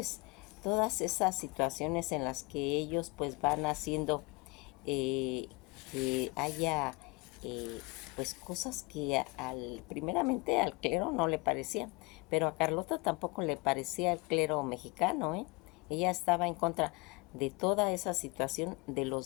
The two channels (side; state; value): right; quieter; 27.1 dB